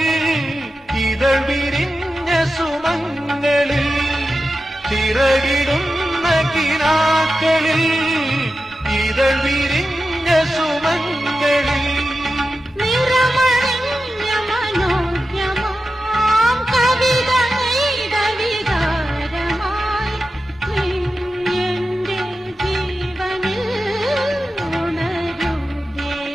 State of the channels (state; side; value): normal; both; correlation 0.92